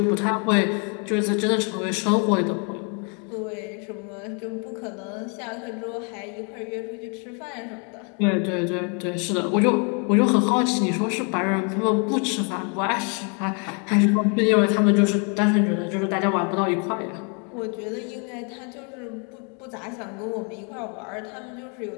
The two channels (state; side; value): quieter; right; 37.2 dB